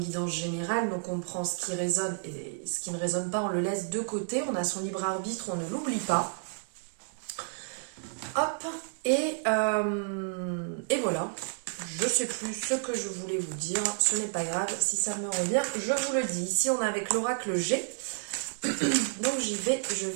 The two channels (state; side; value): silent; left; digital silence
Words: guidance générale, donc on prend ce qui résonne et ce qui ne résonne pas, on le laisse de côté, on a son libre arbitre, on ne l'oublie pas. Hop, et voilà, je ne sais plus ce que je voulais vous dire, ce n'est pas grave, si ça me revient, je vous le dis. Ici on est avec l'oracle G, donc je vais